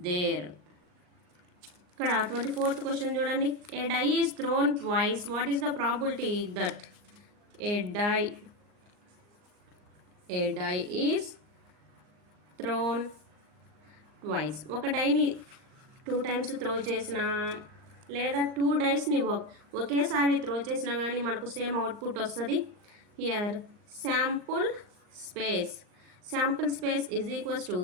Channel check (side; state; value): left; late; 39 ms